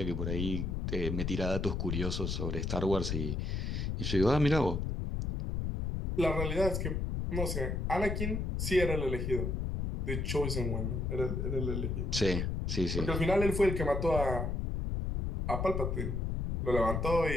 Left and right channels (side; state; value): left; noise; rumble, 1 dB below the sound